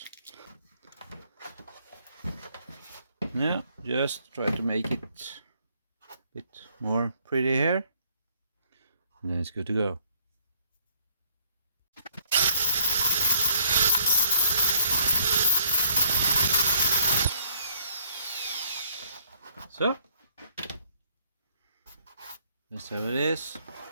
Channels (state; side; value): inverted; both; correlation -0.64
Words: Now just try to make it a bit more pretty here, and then it's good to go. So that's how it is.